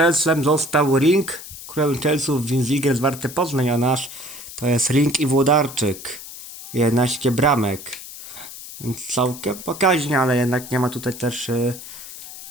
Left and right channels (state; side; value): noise; left; hiss, 13 dB below the sound